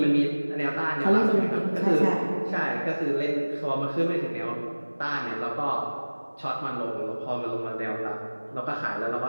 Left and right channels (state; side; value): inverted; both; correlation -1.00